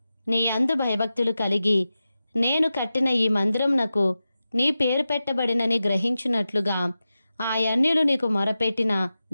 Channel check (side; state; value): both; inverted; correlation -0.92